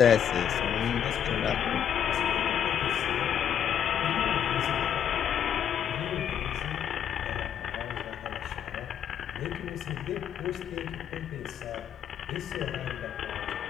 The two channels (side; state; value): right; quieter; 9.0 dB